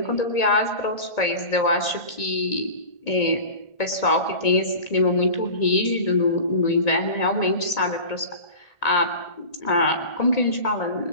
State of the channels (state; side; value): late; right; 1.9 ms